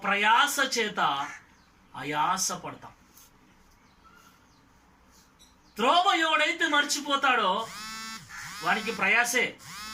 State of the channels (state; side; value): identical; both; correlation 1.00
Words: ప్రయాస చేత ఆయాస పడతాం. త్రోవ ఎవడైతే మర్చిపోతాడో వానికి ప్రయాసే.